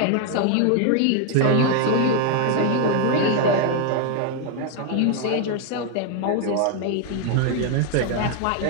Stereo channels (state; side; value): different; both; correlation 0.00